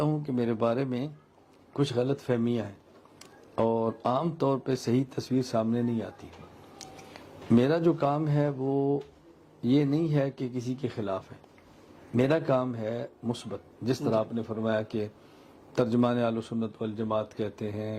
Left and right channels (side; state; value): both; identical; correlation 1.00